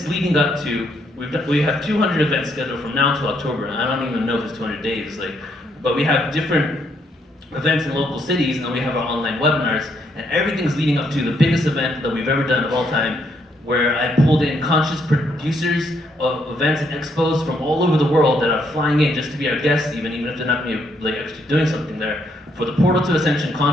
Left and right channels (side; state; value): both; normal; correlation 0.73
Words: leading up to, we have 200 events scheduled from now until October. And I don't even know if it's 200 days, but we have different events in local cities, and then we have our online webinars, and everything's leading up to the biggest event that we've ever done of all time, where I pulled in conscious producers of events and expos from all over the world that are flying in just to be our guests, even if they're not going to be actually doing something there, for the Portal to Ascension